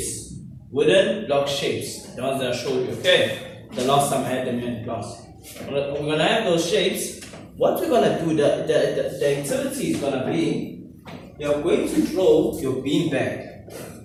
wooden block shapes, the ones that I showed you, okay? The last time I had them in class. We're going to have those shapes. What we're going to do, the activity is going to be, you're going to throw your bean bag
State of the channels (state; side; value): identical; both; correlation 1.00